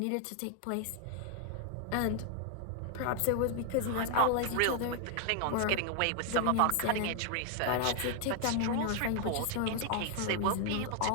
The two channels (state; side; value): different; both; correlation 0.00